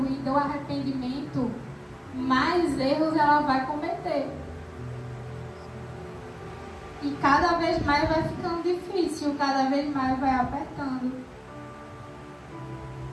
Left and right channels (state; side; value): identical; both; correlation 1.00